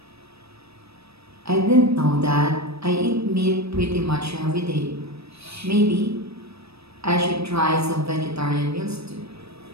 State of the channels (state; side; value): late; left; 0.78 ms